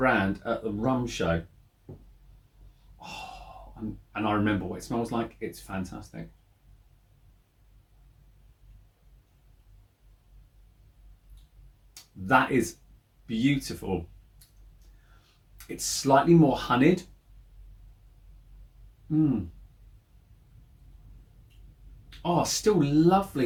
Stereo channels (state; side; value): identical; both; correlation 1.00